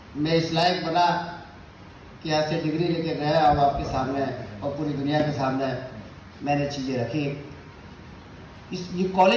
मैं इस लायक बना कि यहाँ से डिग्री लेके गया और आपके सामने और पूरी दुनिया के सामने मैंने चीज़ें रखी। ये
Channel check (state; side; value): identical; both; correlation 1.00